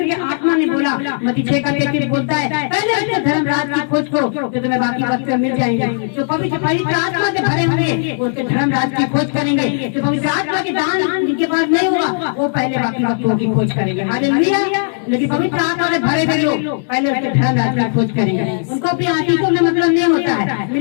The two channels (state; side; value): silent; right; digital silence